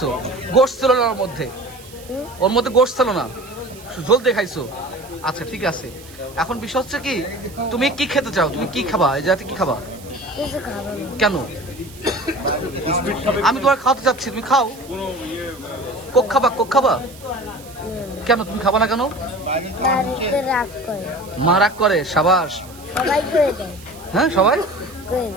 গোশ ছিল না ওর মধ্যে? ওর মধ্যে গোশ ছিল না, ঝোল দিয়ে খাইছো। আচ্ছা ঠিক আছে। এখন বিষয় হচ্ছে কি, তুমি কি খেতে চাও? তুমি কি খাবা? এই জাতি কি খাবা? কেন? আমি তোমার খাওয়াতে চাচ্ছি, তুমি খাও। কোক খাবা? কোক খাবা? কেন তুমি খাবা না? কেন? মা রাগ করে? সাবাস। হ্যাঁ সবাই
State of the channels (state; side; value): noise; right; hiss, 20 dB below the sound